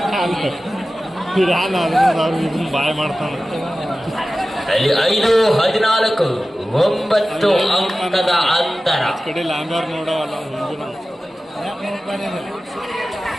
ಬಾಯ್ ಮಾಡ್ತಾನೆ. ಅಲ್ಲಿ 5-14 9 ಅಂಕದ ಅಂತರ. ಕಡೆ ಲಾಂಬರ್ ನೋಡವಲ್ಲ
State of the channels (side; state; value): both; normal; correlation 0.95